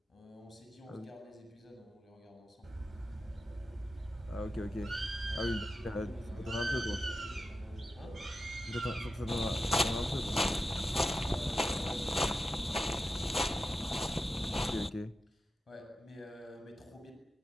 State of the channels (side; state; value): both; normal; correlation 0.91